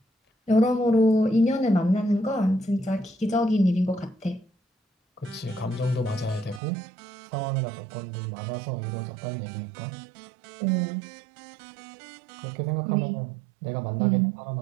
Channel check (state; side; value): drops out; left; at 6.6 s